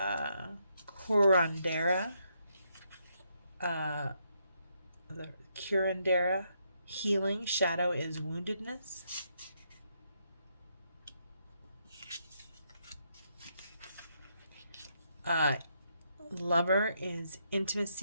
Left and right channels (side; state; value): both; inverted; correlation -0.77